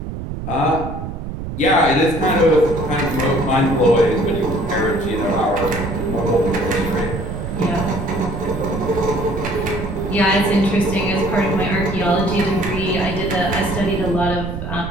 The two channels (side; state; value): right; noise; rumble, 7 dB below the sound